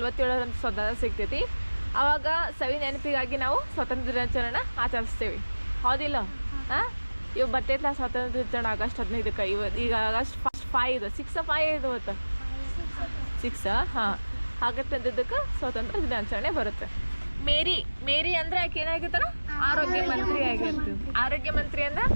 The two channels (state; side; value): inverted; both; correlation -1.00